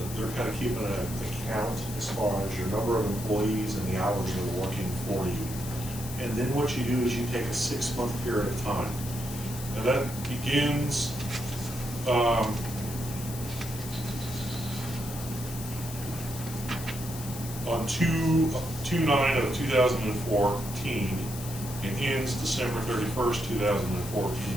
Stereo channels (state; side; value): noise; left; hiss, 11 dB below the sound